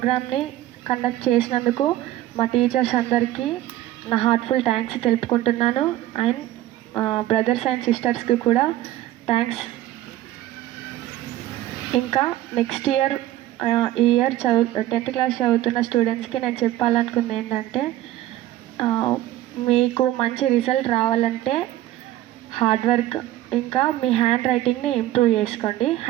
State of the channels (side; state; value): left; quieter; 14.5 dB